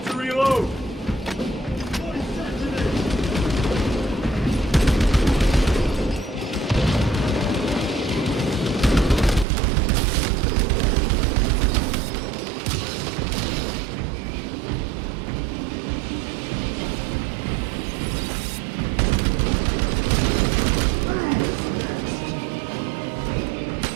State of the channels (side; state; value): left; drops out; at 9.5 s